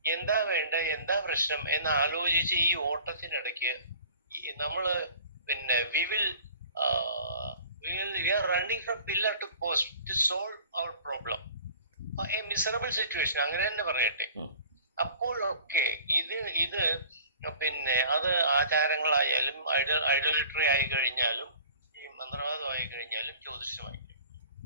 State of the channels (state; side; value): inverted; both; correlation -0.46